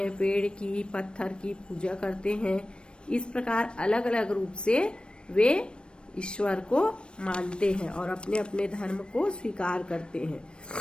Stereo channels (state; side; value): late; right; 0.055 ms